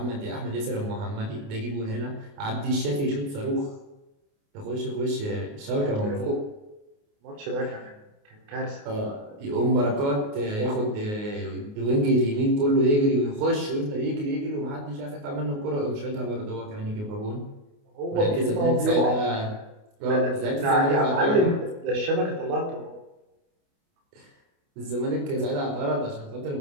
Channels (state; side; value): late; left; 28 ms